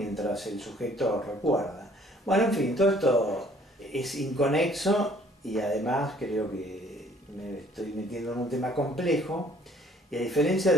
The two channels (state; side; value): normal; both; correlation 0.58